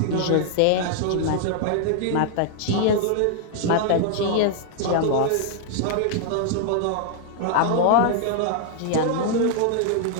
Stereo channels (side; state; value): both; different; correlation 0.00